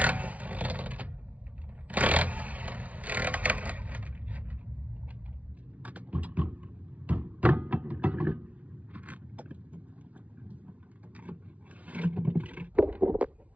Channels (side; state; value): left; late; 0.068 ms